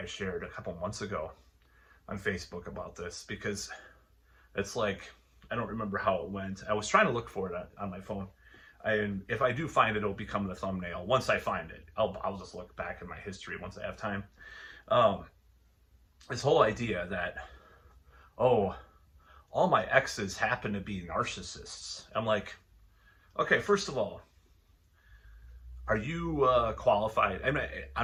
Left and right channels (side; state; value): both; identical; correlation 1.00